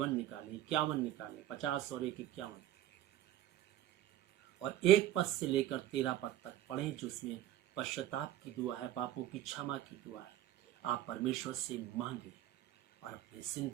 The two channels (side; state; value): left; quieter; 12.9 dB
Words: निकालें, 51 निकालें, 50 और 1 51, और 1 पद से लेकर 13 पद तक पढ़ें, जिसमें पश्चाताप की दुआ है, पापों की क्षमा की दुआ है। आप परमेश्वर से मांगे और अपनी